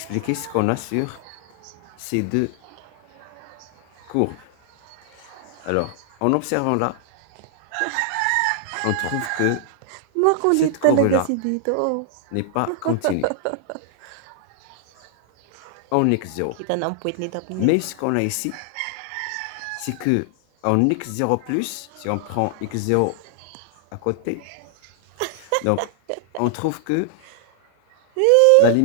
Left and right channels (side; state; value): both; different; correlation 0.00